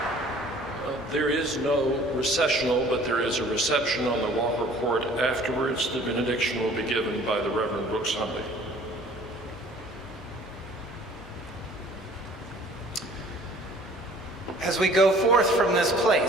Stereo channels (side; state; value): both; normal; correlation 0.52